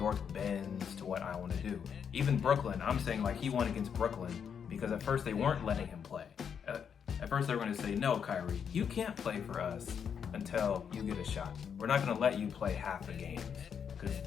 bends to what I want to do. Even Brooklyn, I'm saying like he won against Brooklyn because at first they weren't letting him play. At first they were going to say, no, Kyrie, you can't play for us until you get a shot. We're not going to let you play half the games. Because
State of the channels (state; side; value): quieter; right; 7.4 dB